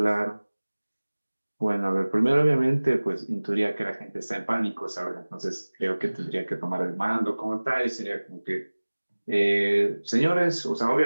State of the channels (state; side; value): inverted; both; correlation -1.00